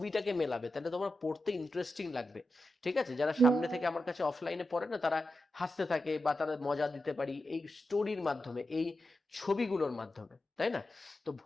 মেলাবে, তাহলে তোমার পড়তে ইন্টারেস্টিং লাগবে। ঠিক আছে, যারা সামনে থেকে আমার কাছে অফলাইনে পড়ে না, তারা হাসতে থাকে বা তারা মজা দিতে পারি এই স্টোরির মাধ্যমে, এই ছবিগুলোর মাধ্যমে, তাই না? তো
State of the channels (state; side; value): normal; both; correlation 0.90